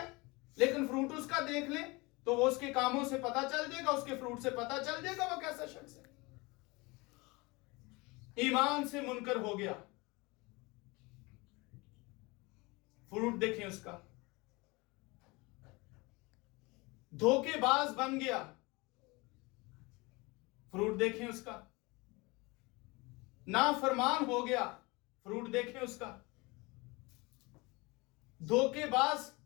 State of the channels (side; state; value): right; quieter; 24.9 dB